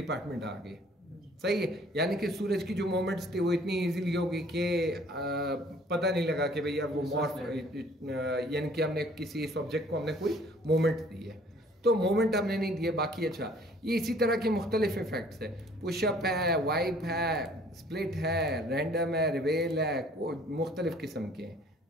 आ गया। सही है? यानी कि सूरज की जो मोमेंट्स थी वो इतनी इजीली होगी कि पता नहीं लगा कि भैया वो मॉर्फ, यानी कि हमने किसी इस ऑब्जेक्ट को हमने कोई मोमेंट दी है, तो मोमेंट हमने नहीं दिए। बाकी अच्छा, ये इसी तरह के मुख्तलिफ इफेक्ट्स है, पुशअप है, वाइप है, स्प्लिट है, रैंडम है, रिवेल है, मुख्तलिफ किस्म के हैं।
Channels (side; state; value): both; normal; correlation 0.56